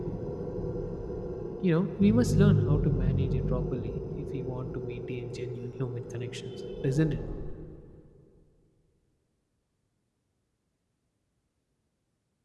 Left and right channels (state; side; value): identical; both; correlation 1.00